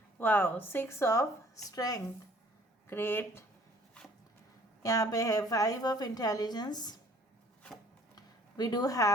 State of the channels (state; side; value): normal; both; correlation 0.56